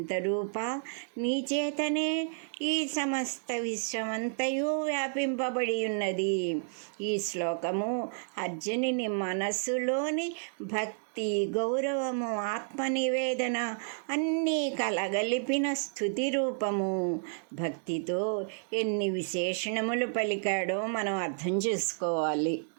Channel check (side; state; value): left; silent; digital silence